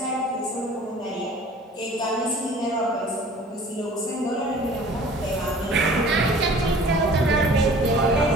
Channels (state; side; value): normal; both; correlation 0.47